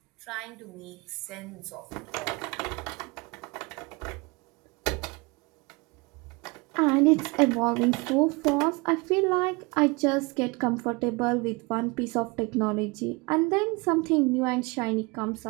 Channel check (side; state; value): left; quieter; 27.1 dB